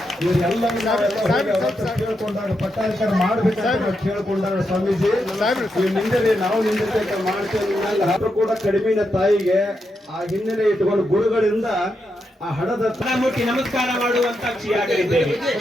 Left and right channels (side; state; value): both; normal; correlation 0.84